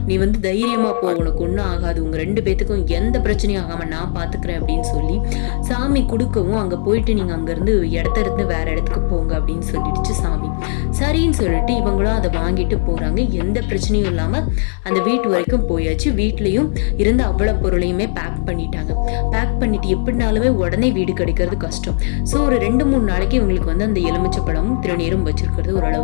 நீ தைரியமாக போ, உனக்கு ஒன்றும் ஆகாது, உங்கள் 2 பேத்துக்கும் எந்த பிரச்சனையும் ஆகாமல் நான் பார்த்துக்கிறேன் அப்படின்னு சொல்லி சாமி கொடுக்கவும் அங்கே போயிட்டு நீங்கள் அங்கேருந்து இருந்து வேற இடத்துக்கு போங்க அப்படின்னு சொல்லிடுச்சு சாமி. சரின்னு சொல்லிட்டு இவங்களும் அதை வாங்கிட்டு போகிறாங்க. எந்த பிரச்சனையும் இல்லாமல் அந்த வீட்டு வரைக்கும் போயாச்சு. வீட்லேயும் இருந்து அவ்வளோ பொருளையுமே பேக் பண்ணிட்டாங்க. பேக் பண்ணிட்டு எப்படினாலுமே உடனே வீடு கிடைக்கிறது கஷ்டம். ஸோ ஒரு 2-3 நாளைக்கு இவங்களுக்கு அந்த எலுமிச்சை பழமும் திருநீரும் வச்சிருக்கிறது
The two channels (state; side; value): silent; right; digital silence